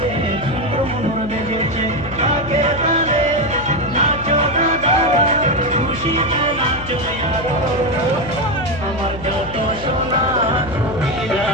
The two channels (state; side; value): noise; left; hum, 13 dB below the sound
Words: সুন্দর মনোর বেজেছে, আগে তালে নাচো দাদা, খুশিতে নাচো আরো, আমার যত সোনা ছবিরা,